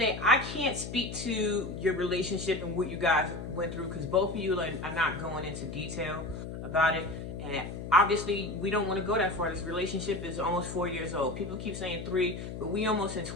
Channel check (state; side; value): noise; left; hum, 8 dB below the sound